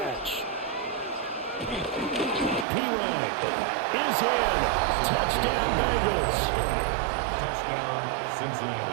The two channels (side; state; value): left; drops out; at 2.7 s